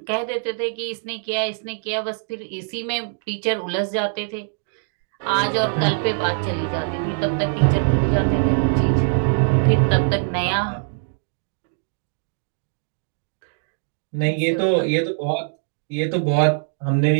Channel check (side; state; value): left; silent; digital silence